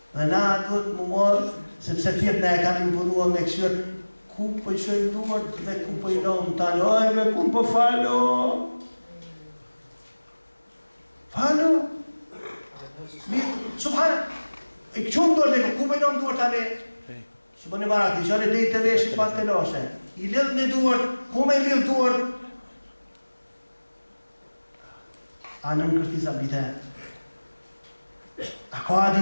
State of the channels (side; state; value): both; inverted; correlation -1.00